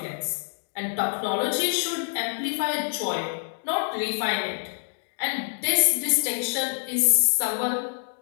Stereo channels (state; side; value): silent; right; digital silence